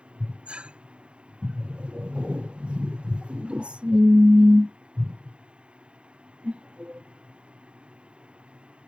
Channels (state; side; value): late; left; 0.055 ms